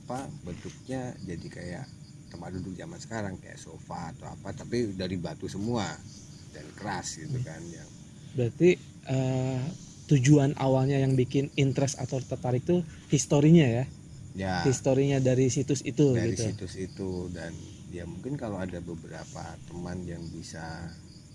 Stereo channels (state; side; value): identical; both; correlation 1.00